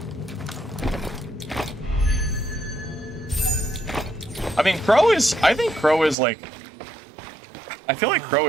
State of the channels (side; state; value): left; drops out; at 6.2 s